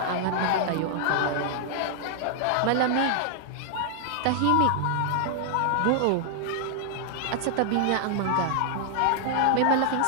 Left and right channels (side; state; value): both; different; correlation -0.01